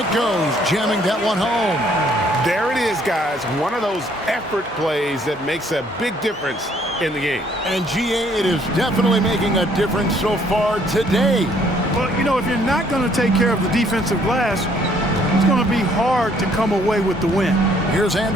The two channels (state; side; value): normal; both; correlation 0.64